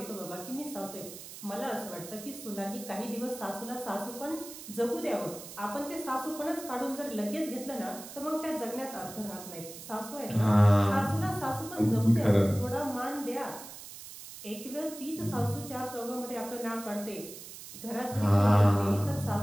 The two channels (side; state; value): right; noise; hiss, 13 dB below the sound